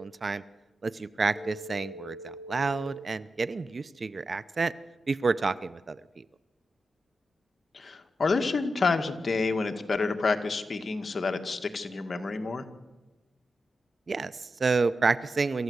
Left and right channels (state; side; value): normal; both; correlation 0.89